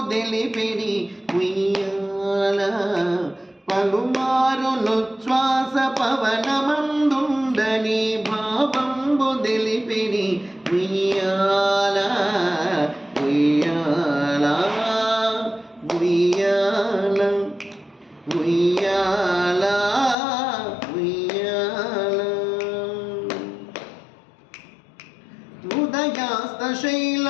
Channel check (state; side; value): drops out; right; at 20.2 s